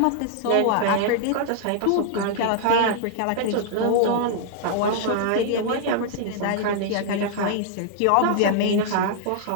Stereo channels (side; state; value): both; different; correlation -0.01